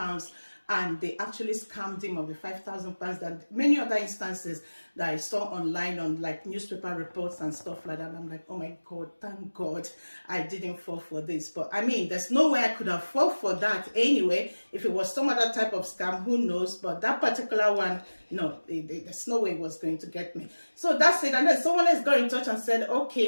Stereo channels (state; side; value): inverted; both; correlation -1.00